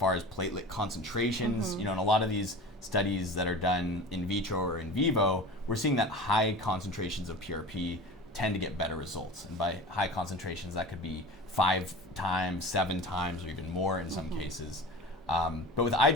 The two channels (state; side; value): normal; both; correlation 0.35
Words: as platelet concentrations, in a lot of these studies that are done in vitro or in vivo, we're seeing that high concentrations of PRP tend to get better results. And by high concentrations, that could be 5 times, 7 times, or even more in some cases. But with eye